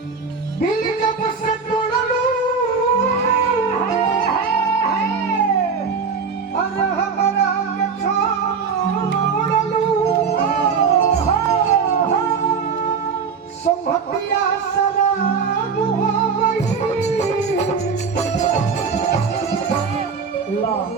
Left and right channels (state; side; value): quieter; left; 5.6 dB